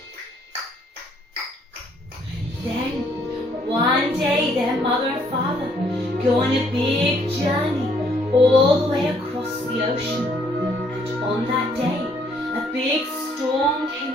Then, one day, their mother and father a big journey all the way across the ocean. And on that day, a big storm came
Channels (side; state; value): both; normal; correlation 0.66